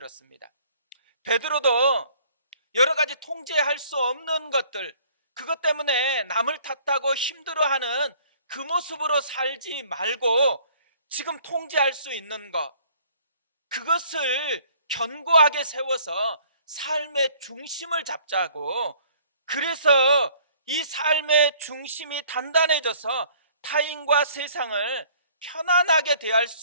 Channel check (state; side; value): inverted; both; correlation -0.57